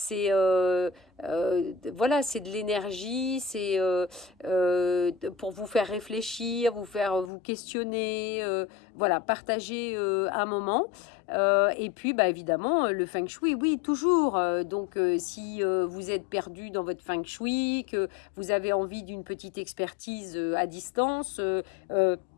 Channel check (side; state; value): right; drops out; at 7.3 s